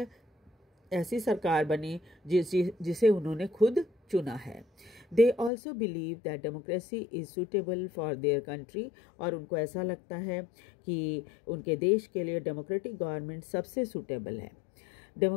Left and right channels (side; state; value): right; drops out; at 5.5 s